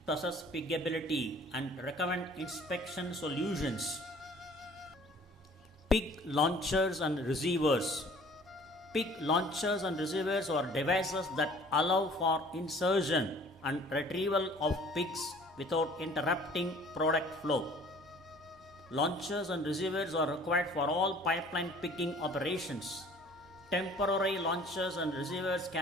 to assess piggability and recommend inspection solutions. Pig launchers and receivers. Pig launchers and receivers are devices that allow for insertion and retrieval of pigs without interrupting product flow. Launchers and receivers are required for all pipeline pigging operations. Temporary launchers and receivers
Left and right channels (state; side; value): normal; both; correlation 0.52